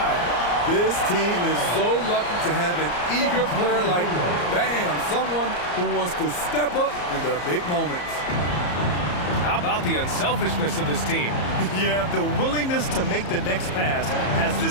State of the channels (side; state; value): right; late; 34 ms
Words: This team is so lucky to have an eager player like, bam, someone who wants to step up in the big moments. How about the unselfishness of this team? Yeah, the willingness to make the next pass has